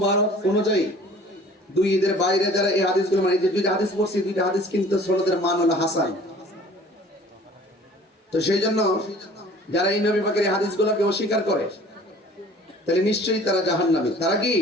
অনুযায়ী দুই ঈদের বাইরে যারা এই হাদিসগুলো মানে, যে দুইটা হাদিস পড়ছি, দুইটা হাদিস কিন্তু সনদের মান হলো হাসান। তো সেই জন্য যারা এই নবী পাকের এই হাদিসগুলোকে অস্বীকার করে তাহলে নিশ্চয়ই তারা জাহান্নামী। তারা কি?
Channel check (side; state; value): both; normal; correlation 0.49